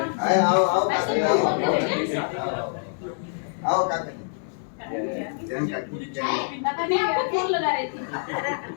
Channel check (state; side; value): silent; right; 62 dB below the other